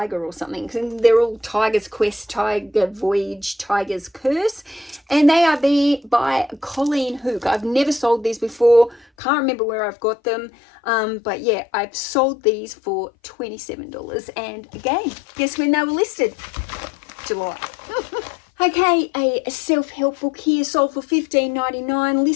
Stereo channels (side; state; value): right; drops out; at 9.1 s